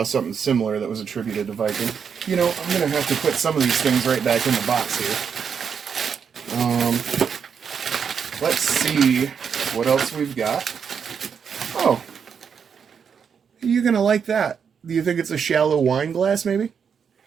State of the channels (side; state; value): left; quieter; 6.9 dB